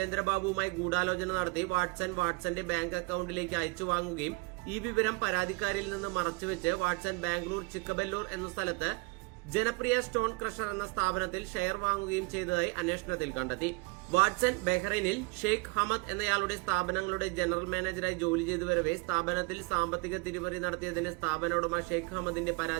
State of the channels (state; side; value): quieter; left; 26.1 dB